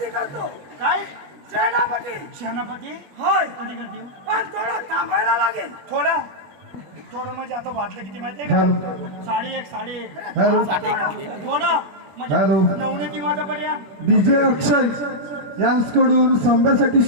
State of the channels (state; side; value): late; left; 21 ms